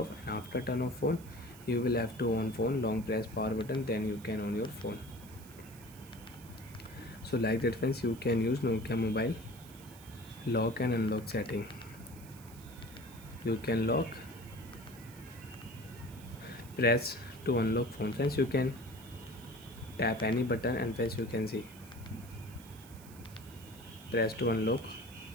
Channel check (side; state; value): right; noise; hiss, 20 dB below the sound